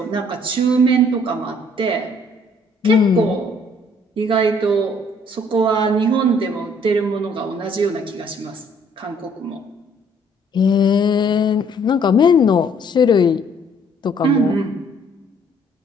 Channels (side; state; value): both; normal; correlation 0.62